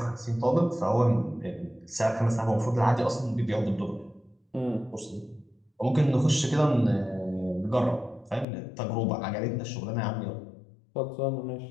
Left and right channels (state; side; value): drops out; right; at 8.5 s